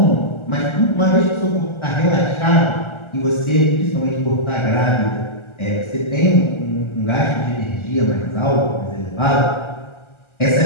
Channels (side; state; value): right; late; 1.3 ms